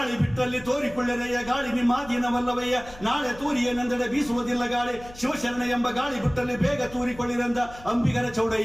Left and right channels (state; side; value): noise; left; hum, 19 dB below the sound